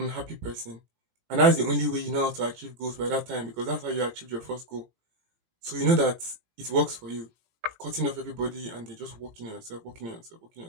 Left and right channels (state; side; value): late; left; 18 ms